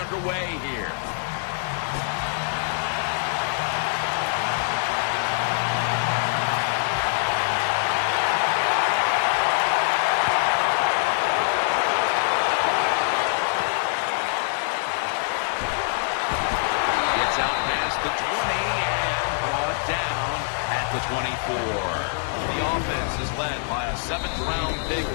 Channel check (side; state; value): right; silent; digital silence